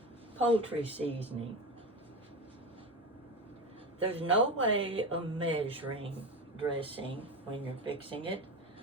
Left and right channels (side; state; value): both; normal; correlation 0.23